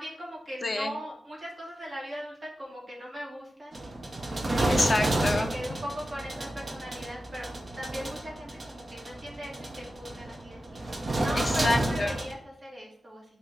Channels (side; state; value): both; normal; correlation 0.92